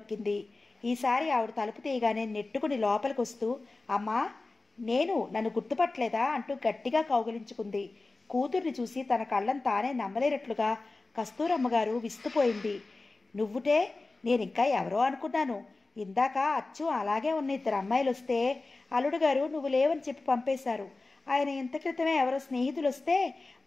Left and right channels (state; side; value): quieter; right; 3.4 dB